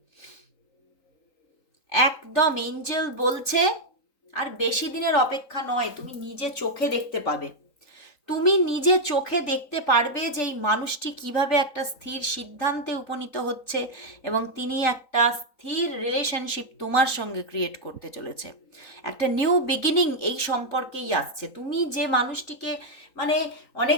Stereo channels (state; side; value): late; right; 3.9 ms